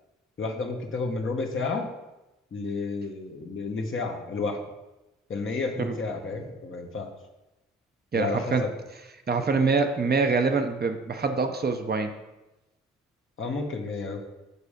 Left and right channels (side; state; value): both; normal; correlation 0.48